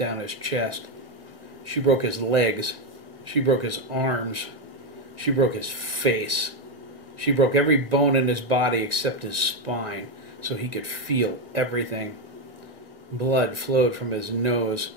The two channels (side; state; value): left; late; 1.7 ms